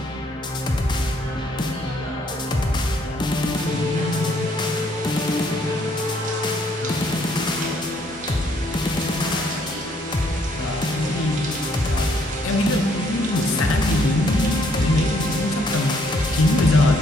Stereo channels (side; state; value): both; normal; correlation 0.68